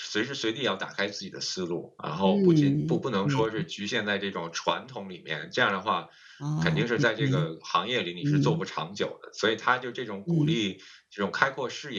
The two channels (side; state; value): both; identical; correlation 1.00